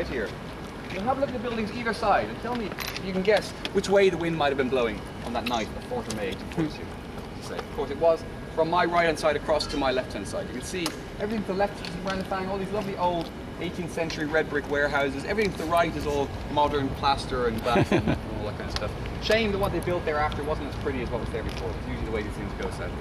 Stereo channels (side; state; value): both; identical; correlation 1.00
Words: here. You'll have a look at the buildings either side and tell me if you can guess which way the wind might have been blowing on that night, the 4th of May, 1842. Of course, it was from my right hand side across to my left hand side. You can see everything to the left is St. Brendan Fang, all these lovely old 18th century red brick warehouses. Everything to the right is all modern plaster and glass and all that kind of stuff. Shame that what they built thereafter wasn't as pretty as what was there before. It's usually the way these things go, sadly.